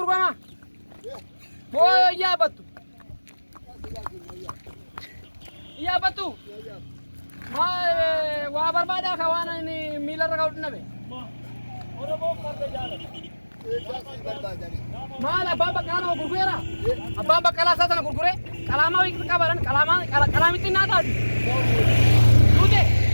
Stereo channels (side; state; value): both; inverted; correlation -1.00